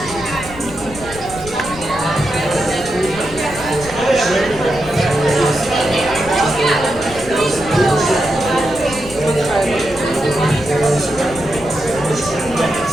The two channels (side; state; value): left; noise; rumble, 14 dB below the sound